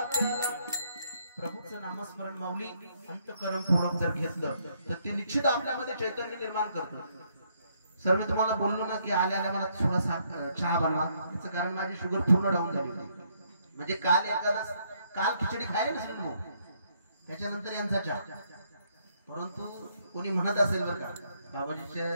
प्याला। प्रभूचं नामस्मरण माऊली अंतःकरणपूर्वक जर घेतलं तर ते निश्चित आपल्यामध्ये चैतन्य निर्माण करतं. सर मी तुम्हाला बोललो ना की आल्या आल्या मला थोडासा चहा बनवा, त्याचं कारण माझी शुगर पूर्ण डाऊन झाली होती. म्हणजे काल खिचडी खायला नसेल मग त्याच्यानंतर यांचा चहा. परंतु कोणी म्हणत असेल बरं का,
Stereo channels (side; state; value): both; inverted; correlation -0.71